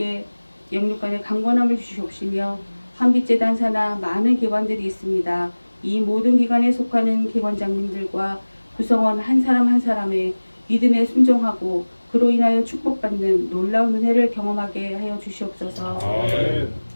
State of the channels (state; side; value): inverted; both; correlation -1.00